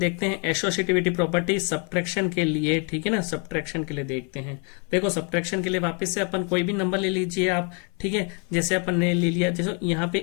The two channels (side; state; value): right; quieter; 37.5 dB